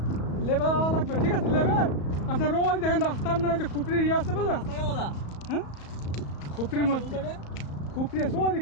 লেবে যাওয়া লাগবে। ঠিক আছে, লেবে আপনার ওই দেখেন রাস্তা, আপনার ওই যে খুপড়ির ইয়ে আছে বুঝলেন? হ্যাঁ, খুপড়ির মধ্যে খুপড়ি আছে, ওই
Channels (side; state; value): right; late; 34 ms